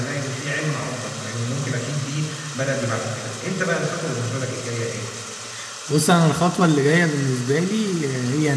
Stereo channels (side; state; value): both; identical; correlation 1.00